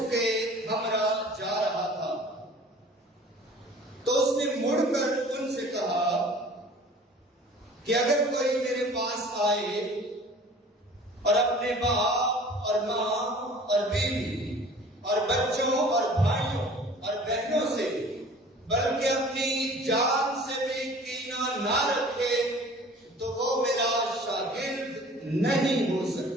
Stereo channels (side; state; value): both; normal; correlation 0.46